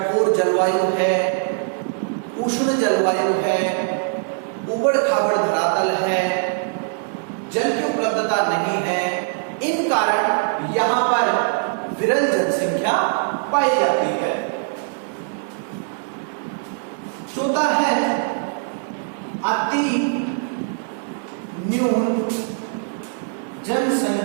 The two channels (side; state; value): left; silent; 64 dB below the other